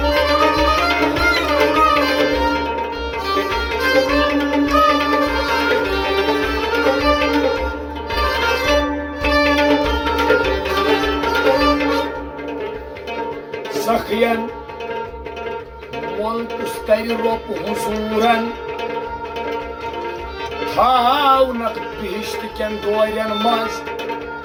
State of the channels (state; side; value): identical; both; correlation 1.00